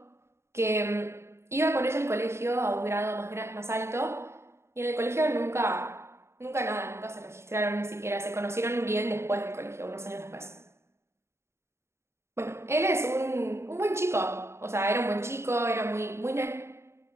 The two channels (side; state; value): left; late; 0.13 ms